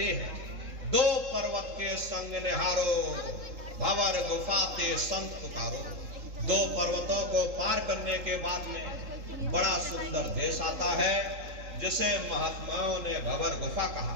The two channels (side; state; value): left; late; 3.8 ms